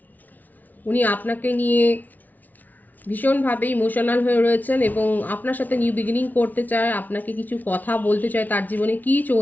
উনি আপনাকে নিয়ে ভীষণভাবে ইমোশনাল হয়ে রয়েছেন এবং আপনার সাথে নিউ বিগিনিং করতে চায়, আপনাকে কিছু কথা বলতে চায়, তার জীবনে কি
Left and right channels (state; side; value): late; right; 0.080 ms